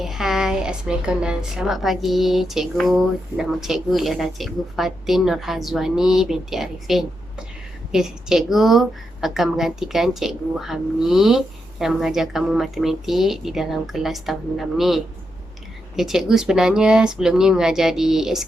hai, Assalamualaikum dan selamat pagi cikgu. Nama cikgu ialah Cikgu Fatin Nurhazwani binti Arifin. Okey, cikgu akan menggantikan Cikgu Hamni yang mengajar kamu matematik di dalam kelas tahun 6 ni. Okey, cikgu sebenarnya sebelum ni mengajar di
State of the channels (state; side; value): normal; both; correlation 0.84